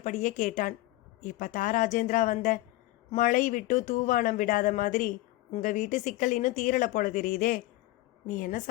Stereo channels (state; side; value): quieter; right; 18.1 dB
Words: கேட்டான். இப்பதான் ராஜேந்திரா வந்த. மழை விட்டு தூவானம் விடாத மாதிரி உங்க வீட்டு சிக்கல் இன்னும் தீரலை போல தெரியுதே. நீ என்ன